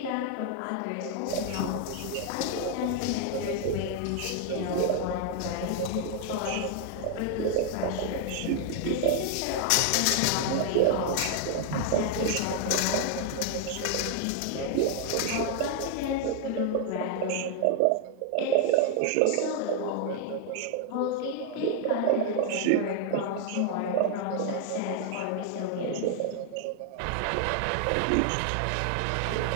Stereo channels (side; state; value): both; different; correlation 0.00